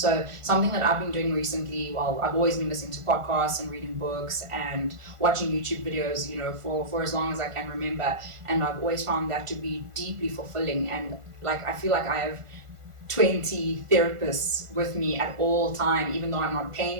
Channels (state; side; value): late; left; 1.4 ms